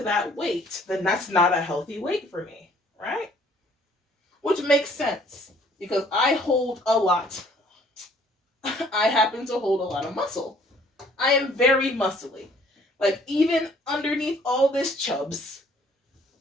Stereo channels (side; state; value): both; normal; correlation 0.59